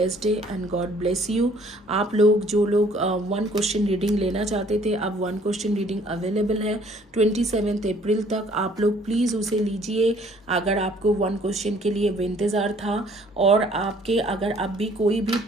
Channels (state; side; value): normal; both; correlation 0.58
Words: day and God bless you. आप लोग जो लोग 1 क्वेश्चन रीडिंग लेना चाहते थे, अब 1 क्वेश्चन रीडिंग अवेलेबल है 27 अप्रैल तक। आप लोग प्लीज़ उसे लीजिए अगर आपको 1 क्वेश्चन के लिए इंतज़ार था, और आपके अगर अब भी कोई भी